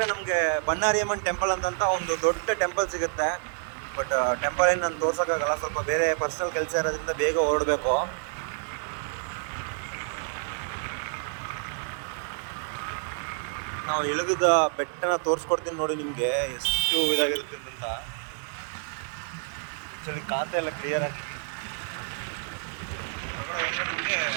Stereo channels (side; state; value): left; silent; 59 dB below the other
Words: ನಮಗೆ ಬನ್ನಾರಿಯಮ್ಮನ್ ಟೆಂಪಲ್ ಅಂತ ಒಂದು ದೊಡ್ಡ ಟೆಂಪಲ್ ಸಿಗುತ್ತೆ. ಬಟ್ ಟೆಂಪಲ್ ಏನು ನಾನು ತೋರ್ಸೋಕ್ಕಾಗಲ್ಲ, ಸ್ವಲ್ಪ ಬೇರೆ ಪರ್ಸನಲ್ ಕೆಲಸ ಇರೋದ್ರಿಂದ ಬೇಗ ಹೊರಡಬೇಕು. ನಾವು ಇಳಿದ ಬೆಟ್ಟನ ತೋರಿಸ್ಕೊಡ್ತೀನಿ ನೋಡಿ ನಿಮಗೆ, ಎಷ್ಟು ಇದಾಗಿರುತ್ತೆ ಅಂತ. ಆ್ಯಕ್ಚುಲಿ ಖಾತೆ ಎಲ್ಲ ಕ್ಲಿಯರ್ ಆಗಿ ನಿಮಗೆ